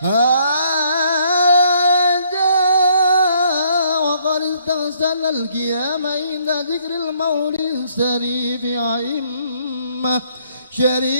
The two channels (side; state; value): both; inverted; correlation -0.67